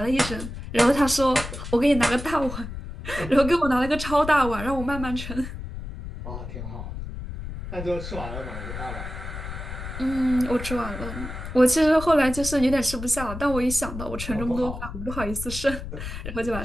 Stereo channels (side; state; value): left; noise; rumble, 8 dB below the sound